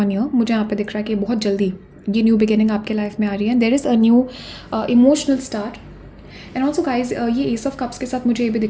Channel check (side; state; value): both; identical; correlation 1.00